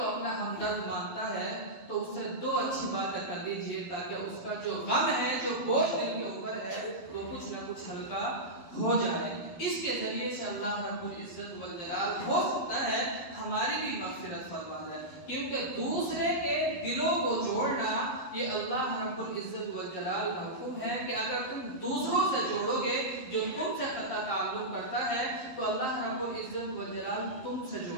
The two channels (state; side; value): late; right; 12 ms